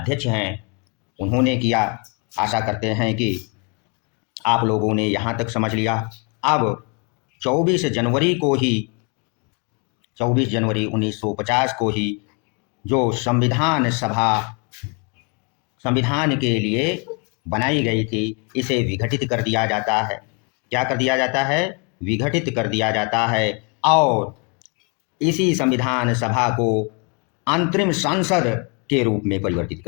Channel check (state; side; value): quieter; right; 34.3 dB